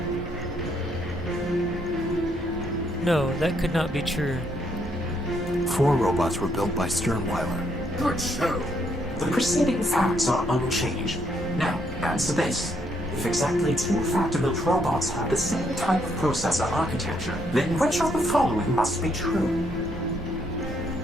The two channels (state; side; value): normal; both; correlation 0.73